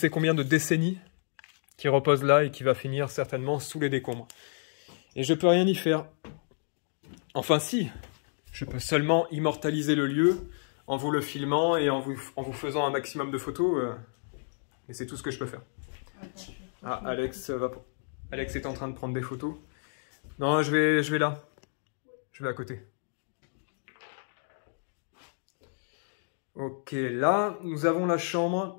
combien de décennies, qui repose là et qui va finir certainement sous les décombres. Et je peux rien y faire. Enfin si, je peux seulement immortaliser le lieu en vous le filmant et en vous faisant un maximum de photos. Et c'est tout ce que je peux faire. Ah, Alex est en train de prendre des photos. Non, je vais là. Je vais à côté. Ok, là, nous avons la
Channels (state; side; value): silent; right; digital silence